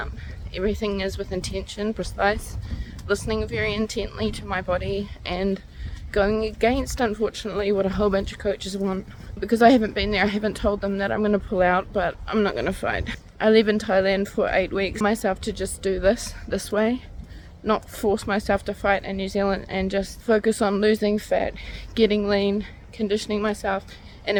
Everything is with intention, precise, listening very intently to my body and going against, unfortunately, what a whole bunch of coaches want. Because I haven't been there, I haven't told them that I'm going to pull out, but I'm not going to fight. I live in Thailand for 8 weeks. Myself to just do this way, not force myself to fight in New Zealand, and just focus on losing fat, getting lean, conditioning myself, and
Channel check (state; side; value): identical; both; correlation 1.00